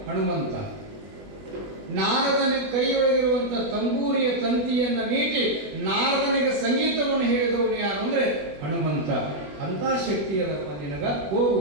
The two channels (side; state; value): left; late; 20 ms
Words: ಹನುಮಂತ. ನಾರದನಿಗೆ ಕೈಯೊಳಗಿರುವಂತ ತಂಬೂರಿಯ ತಂತಿಯನ್ನು ಮೀಟಿ ನಾರದನಿಗೆ ಸಂಗೀತವನ್ನು ಹೇಳಿದವನು ಯಾರು ಅಂದ್ರೆ ಹನುಮಂತ. ಅಂತ ಶಕ್ತಿ ಅದಪ್ಪ ನಿನಗ. ಹೋಗು,